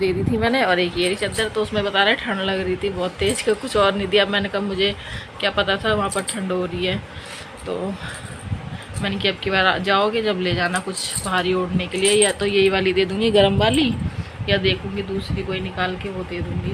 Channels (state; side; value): identical; both; correlation 1.00